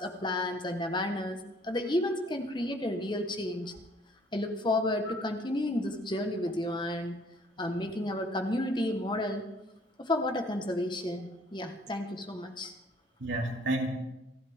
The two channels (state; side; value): normal; both; correlation 0.58